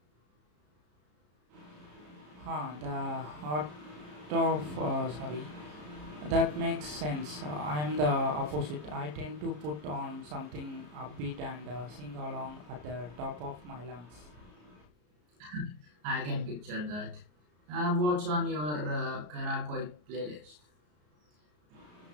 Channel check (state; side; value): late; left; 33 ms